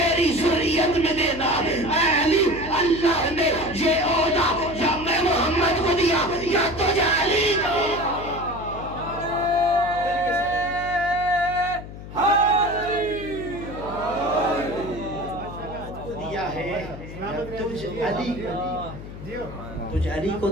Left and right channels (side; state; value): left; noise; hum, 12 dB below the sound